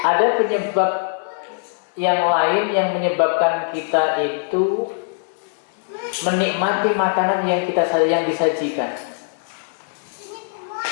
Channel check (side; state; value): right; silent; digital silence